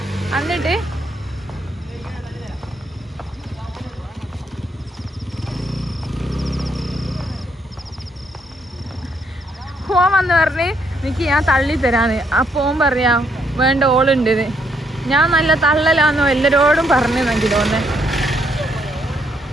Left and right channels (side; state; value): both; normal; correlation 0.73